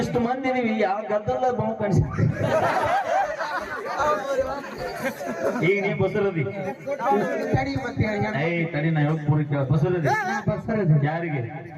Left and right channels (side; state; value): both; identical; correlation 1.00